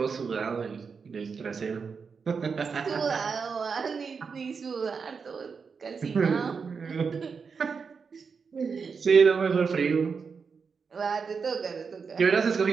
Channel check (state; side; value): quieter; left; 5.5 dB